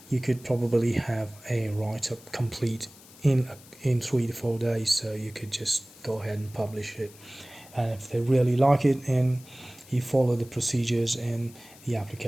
you could probably have a write-up complete in 3 to 4 days. So you could just go ahead and publish it, and if they really like it and you follow the procedures and the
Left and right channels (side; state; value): left; noise; hiss, 22 dB below the sound